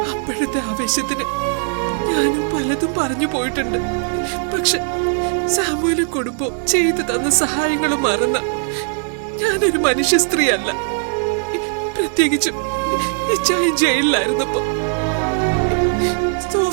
അപ്പോഴത്തെ ആവേശത്തിന് ഞാനും പലതും പറഞ്ഞു പോയിട്ടുണ്ട്. പക്ഷെ സാമുവലും കുടുംബവും ചെയ്തു തന്ന സഹായങ്ങളും മറന്ന ഞാനൊരു മനുഷ്യ സ്ത്രീ അല്ല. പ്രത്യേകിച്ചും ഇച്ചായി ജയിലിലായിരുന്നപ്പോ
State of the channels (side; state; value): left; silent; 55 dB below the other